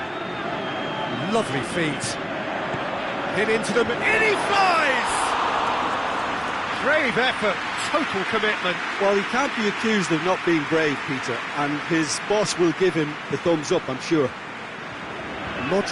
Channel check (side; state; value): both; identical; correlation 1.00